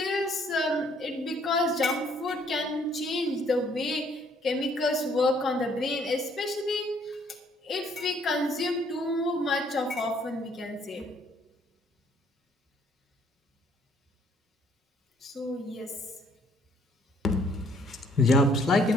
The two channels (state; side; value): normal; both; correlation 0.64